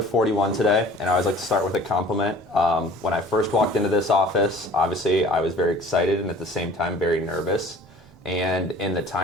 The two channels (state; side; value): normal; both; correlation 0.47